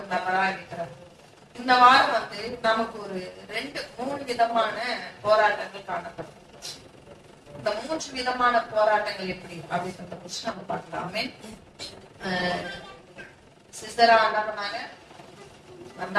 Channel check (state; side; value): identical; both; correlation 1.00